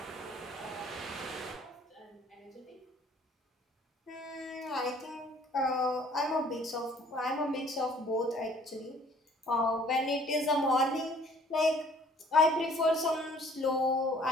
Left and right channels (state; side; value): normal; both; correlation 0.56